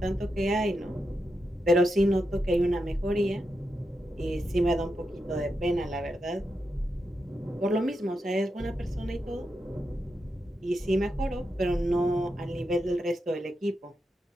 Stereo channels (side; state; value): both; normal; correlation 0.86